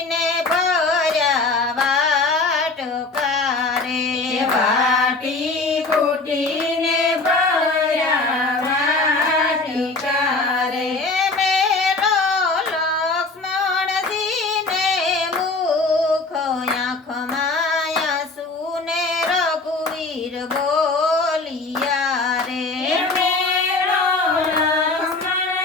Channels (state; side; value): quieter; right; 3.5 dB